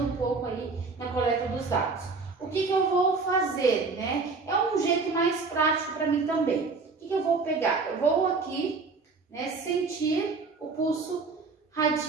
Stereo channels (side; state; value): left; quieter; 4.3 dB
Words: um pouco aí na coleta dos dados. O que eu vou fazer, né? É um jeito mais prático para mim também. O que eu vou pegar? Eu vou aqui, né, sentir o pulso